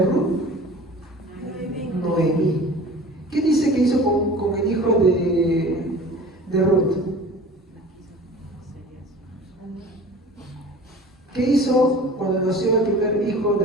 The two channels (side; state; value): both; normal; correlation 0.42